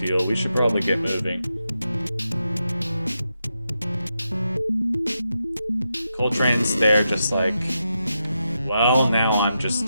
We should probably get moving. Coltrane's there just like, well, now I'm just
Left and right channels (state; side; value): inverted; both; correlation -0.86